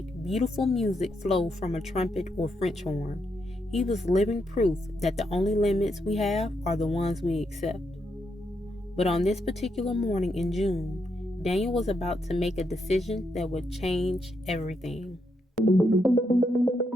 beautiful music flow from a trumpet or French horn. He was living proof that the only limits we have are the ones we accept. But on this particular morning in June, Daniel was about to make a decision that would change everything.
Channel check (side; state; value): both; normal; correlation 0.80